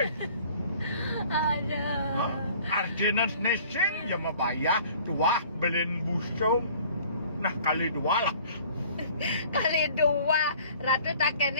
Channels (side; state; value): both; inverted; correlation -0.51